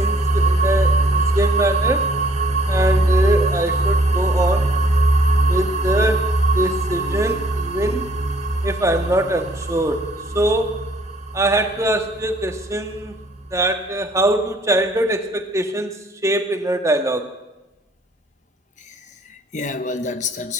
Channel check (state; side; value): normal; both; correlation 0.61